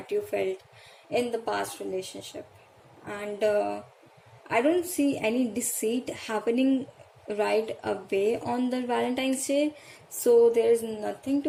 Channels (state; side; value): identical; both; correlation 1.00